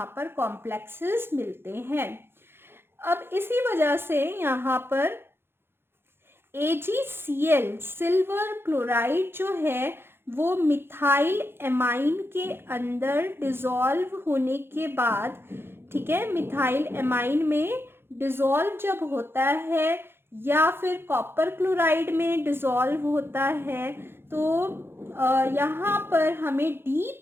पर कॉम्प्लेक्सेस मिलते हैं। अब इसी वजह से यहाँ पर AgCl सिल्वर क्लोराइड जो है वो मिथाइल एमाइन के अंदर डिसॉल्व होने के बाद, ठीक है, मिथाइल एमाइन में डिसॉल्व जब होता है या फिर कॉपर क्लोराइड में डिसॉल्व होता है, तो यहाँ पर हमें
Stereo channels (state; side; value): late; left; 0.11 ms